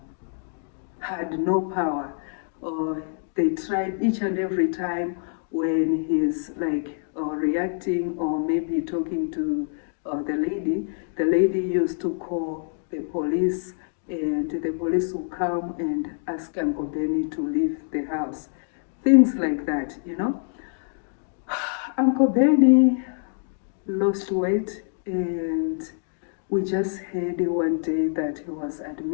had no power. They tried each and every time when he's like reacting or maybe talking to the lady. The lady used to call the police, and the police would come and ask Uncle Benny to leave the house. Things like that, you know. Uncle Benny lost weight, and we just heard one day that he was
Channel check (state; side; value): silent; right; digital silence